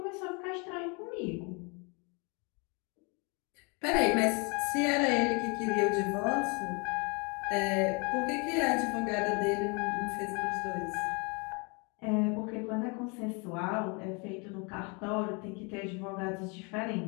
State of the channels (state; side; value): quieter; right; 31.8 dB